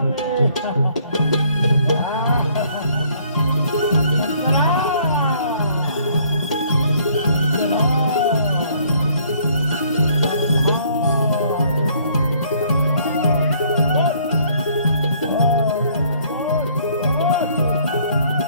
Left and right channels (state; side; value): inverted; both; correlation -0.62